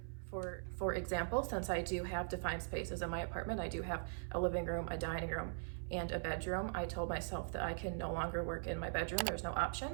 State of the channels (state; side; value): silent; left; 50 dB below the other